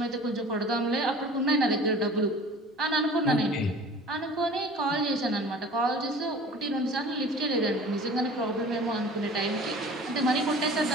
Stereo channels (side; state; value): both; normal; correlation 0.44